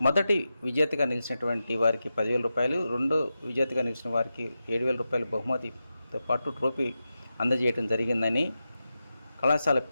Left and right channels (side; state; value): both; inverted; correlation -0.91